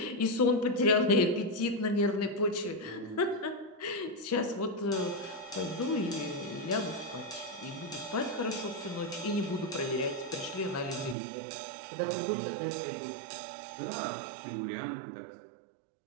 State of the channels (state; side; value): drops out; left; at 11.2 s